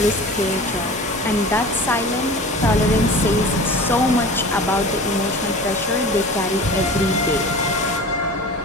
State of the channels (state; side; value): normal; both; correlation 0.37